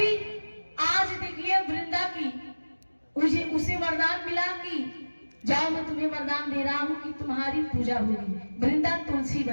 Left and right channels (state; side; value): inverted; both; correlation -1.00